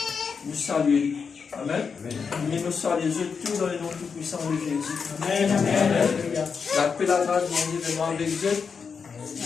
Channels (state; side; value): quieter; right; 5.8 dB